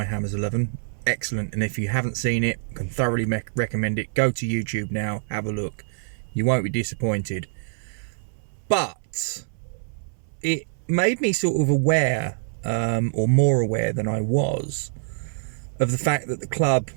Hammers 11. Excellent, and if you haven't seen it, I can thoroughly recommend it. Go to YouTube now, have a look. You won't be disappointed. But it made me sort of aware, or more aware than I was, of the fact that the club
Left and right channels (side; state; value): left; silent; 62 dB below the other